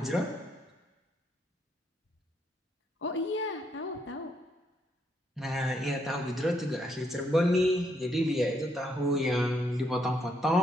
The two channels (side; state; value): both; normal; correlation 0.74